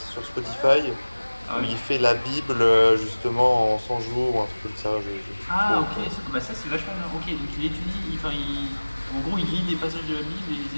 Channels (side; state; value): both; inverted; correlation -1.00